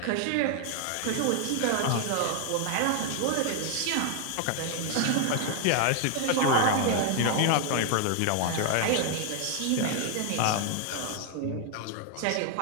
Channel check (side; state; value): both; different; correlation 0.00